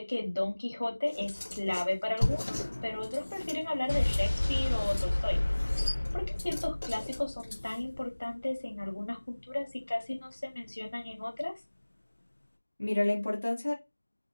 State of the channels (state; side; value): inverted; both; correlation -1.00